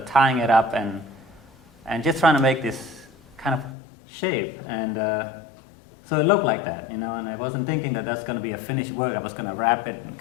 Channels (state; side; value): drops out; right; at 3.8 s